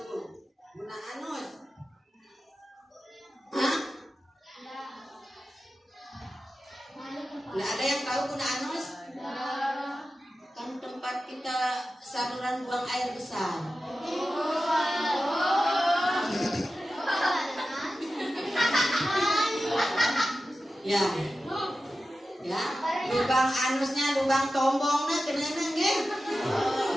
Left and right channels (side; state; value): both; normal; correlation 0.93